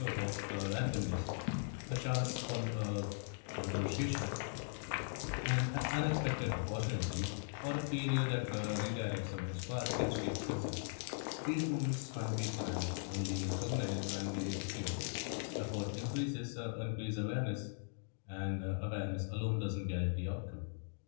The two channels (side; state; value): right; silent; digital silence